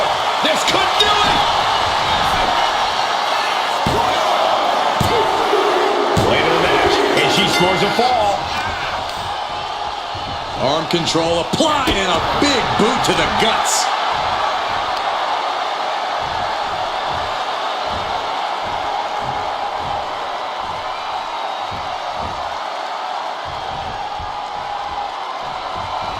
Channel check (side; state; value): both; identical; correlation 1.00